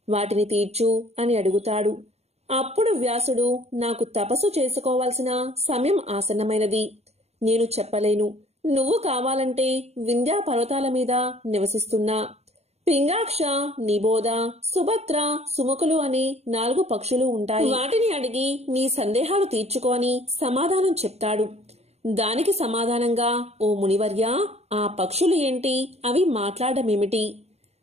వాటిని తీర్చు అని అడుగుతాడు. అప్పుడు వ్యాసుడు, నాకు తపస్సు చేసుకోవాల్సిన సమయం ఆసన్నమైనది, నేను చెప్పలేను. నువ్వు కావాలంటే వింధ్యా పర్వతాల మీద నివసిస్తున్నా పింగాక్ష, నిబోధ, సుభద్ర, సుముఖులు అని 4 పక్షులు ఉంటాయి. వాటిని అడిగి నీ సందేహాలు తీర్చుకోని సమాధానం చెప్తాడు. దానికి సమాధానంగా, ఓ మునివర్య, ఆ పక్షులు ఏంటి, అవి మాట్లాడమేమిటి,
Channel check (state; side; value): late; left; 0.31 ms